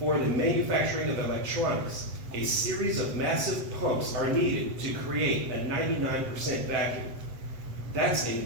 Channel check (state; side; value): late; left; 8.0 ms